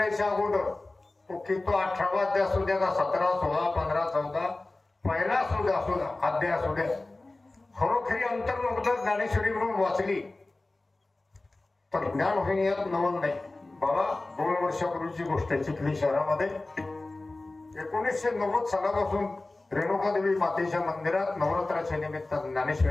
अगोदर की तो 18वा अध्याय असू द्या का 17, 16, 15, 14 पहिला सुद्धा असू द्या, अध्याय असू द्या, खरोखरी अंतर्मुक्त ज्ञानेश्वरी म्हणून वाचली तर ज्ञान होईन यात नवल नाही. बाबा 2 वर्षापूर्वीची गोष्ट आहे. चिखली शहरामध्ये 1990 सालापासून रेणुकादेवी मातेच्या मंदिरात नवरात्राच्या निमित्त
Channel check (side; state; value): right; quieter; 3.0 dB